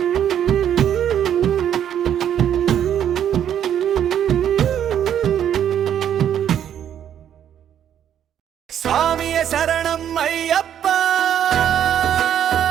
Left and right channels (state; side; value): quieter; left; 9.7 dB